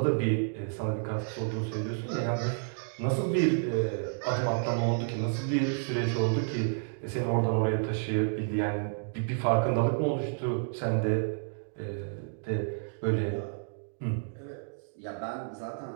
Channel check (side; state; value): left; silent; digital silence